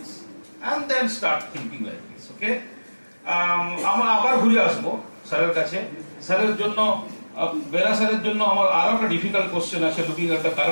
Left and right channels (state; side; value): inverted; both; correlation -1.00